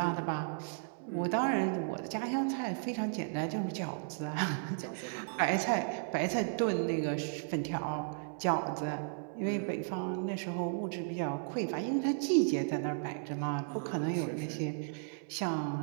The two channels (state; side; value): silent; left; 55 dB below the other